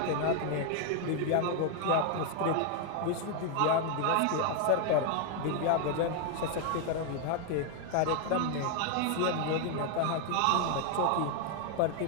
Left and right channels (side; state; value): both; different; correlation 0.00